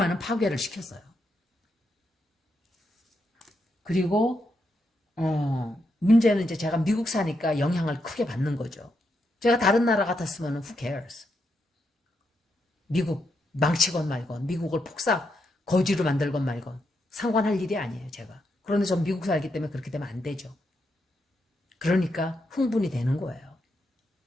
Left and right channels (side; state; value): both; normal; correlation 0.81